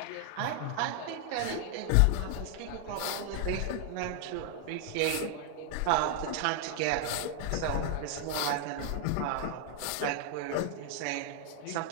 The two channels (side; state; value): both; different; correlation 0.00